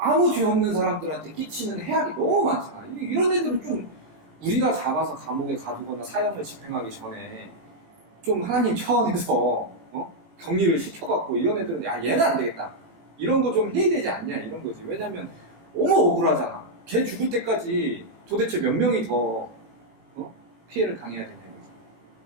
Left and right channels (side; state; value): left; late; 18 ms